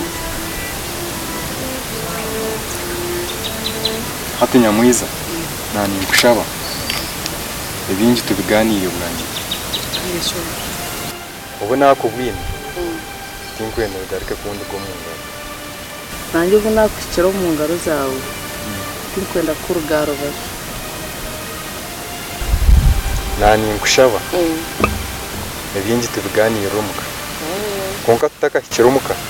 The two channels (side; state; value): both; identical; correlation 1.00